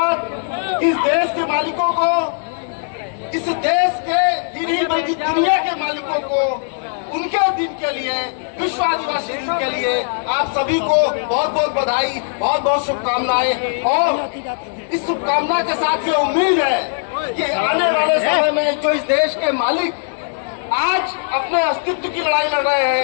इस देश के मालिकों को, इस देश के नहीं बल्कि दुनिया के मालिकों को उनके दिन के लिए, विश्व आदिवासी दिन के लिए आप सभी को बहुत बहुत बधाई, बहुत बहुत शुभकामनाएं। और इस शुभकामना के साथ ये उम्मीद है कि आने वाले समय में जो इस देश के मालिक आज अपने अस्तित्व की लड़ाई लड़ रहे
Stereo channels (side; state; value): right; silent; digital silence